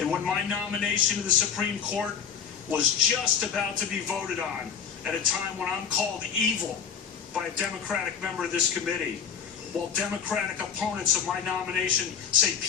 when my nomination to the Supreme Court was just about to be voted on at a time when I'm called evil by a Democratic member of this committee, while Democratic opponents of my nomination say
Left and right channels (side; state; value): right; quieter; 7.2 dB